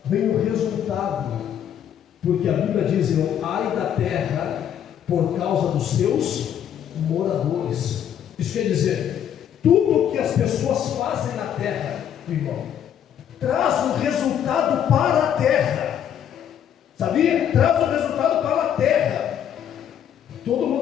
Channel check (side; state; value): right; quieter; 9.5 dB